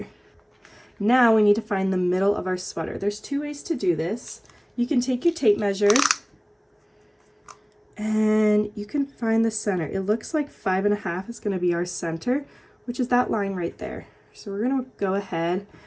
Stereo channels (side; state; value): both; identical; correlation 1.00